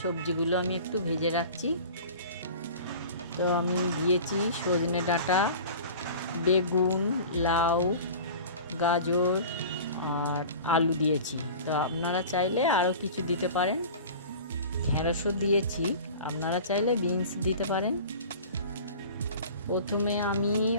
সবজিগুলো আমি একটু ভেজে রাখছি। তো আমি দিয়েছি সজনে ডাঁটা, বেগুন, লাউ, গাজর আর আলু দিয়েছি। তো আপনারা চাইলে আরও কিছু দিতে পারেন। ঢেঁড়সও দিয়েছি, আপনারা চাইলে বিনস দিতে পারেন। প্রথমে আমি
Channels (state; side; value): inverted; both; correlation -0.39